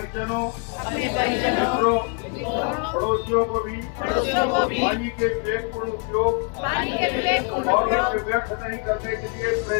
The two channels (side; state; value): right; quieter; 35.0 dB